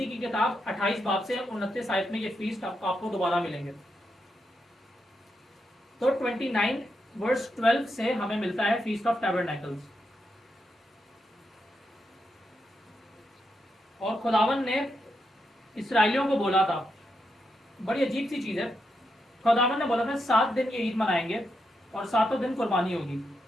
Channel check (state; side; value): normal; both; correlation 0.83